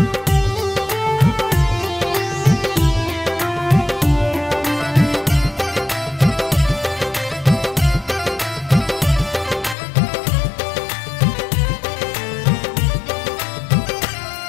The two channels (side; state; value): right; drops out; at 9.8 s